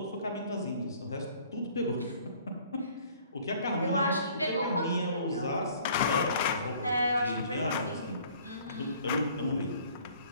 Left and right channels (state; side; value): inverted; both; correlation -0.55